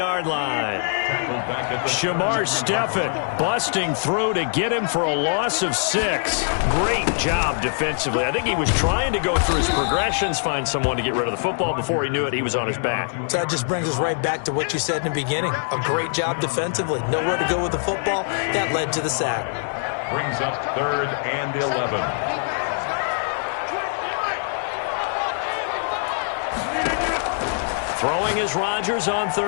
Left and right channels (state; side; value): silent; right; digital silence